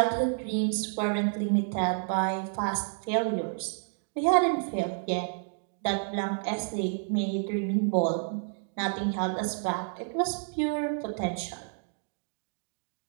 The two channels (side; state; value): left; silent; digital silence